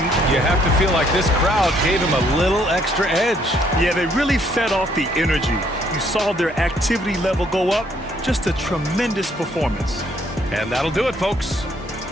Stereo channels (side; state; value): both; normal; correlation 0.67